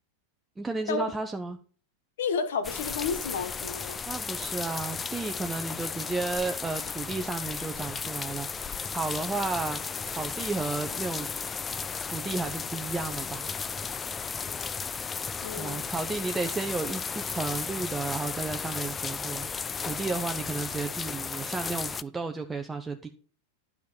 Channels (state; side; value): normal; both; correlation 0.67